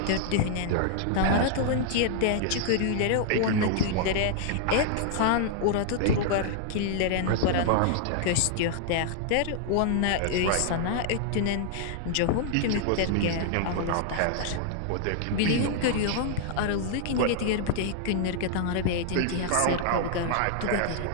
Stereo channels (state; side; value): different; both; correlation 0.00